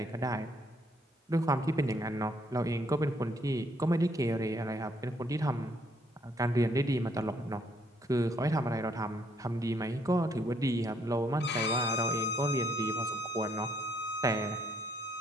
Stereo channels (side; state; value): both; normal; correlation 0.69